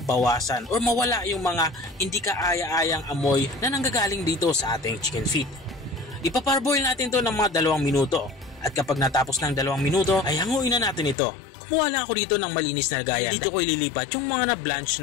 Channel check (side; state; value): right; drops out; at 11.2 s